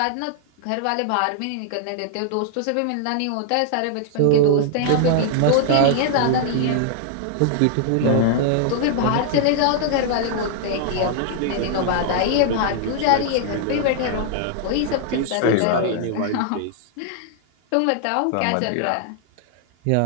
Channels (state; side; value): different; both; correlation -0.01